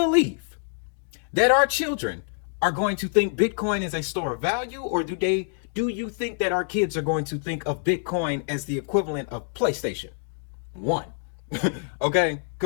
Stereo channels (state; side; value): silent; right; digital silence